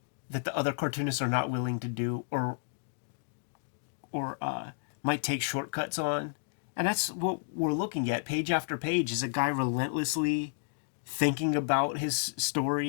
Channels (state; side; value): silent; right; digital silence